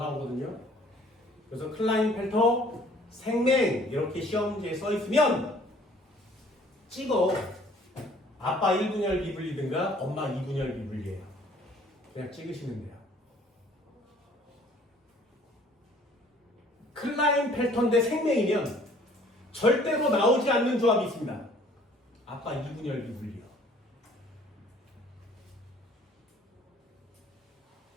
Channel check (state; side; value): normal; both; correlation 0.56